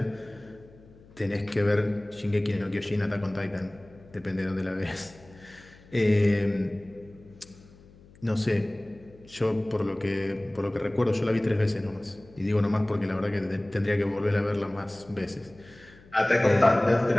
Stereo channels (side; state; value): left; noise; hum, 24 dB below the sound